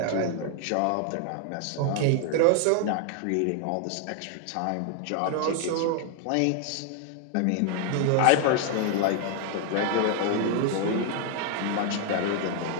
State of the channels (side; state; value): both; different; correlation 0.00